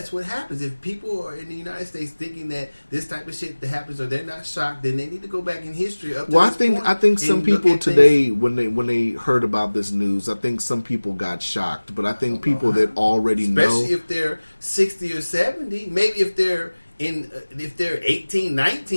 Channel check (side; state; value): both; inverted; correlation -1.00